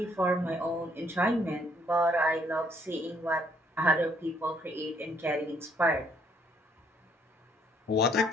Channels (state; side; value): normal; both; correlation 0.67